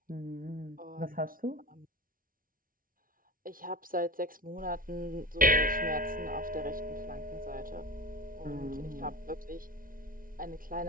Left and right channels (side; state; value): left; late; 0.41 ms